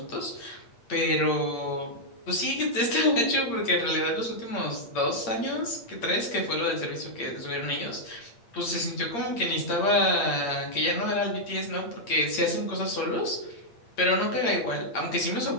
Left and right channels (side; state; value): right; late; 8.7 ms